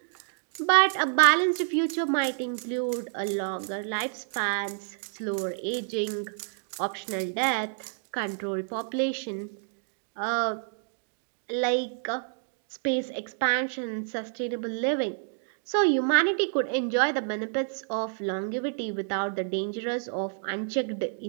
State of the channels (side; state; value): left; silent; digital silence